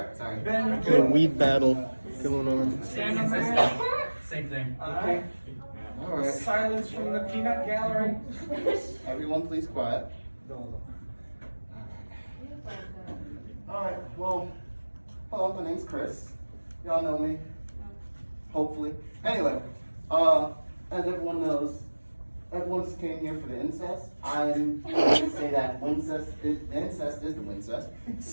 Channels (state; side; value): inverted; both; correlation -1.00